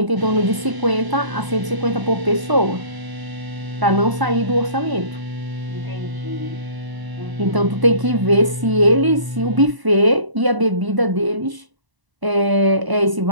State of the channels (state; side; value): late; left; 1.0 ms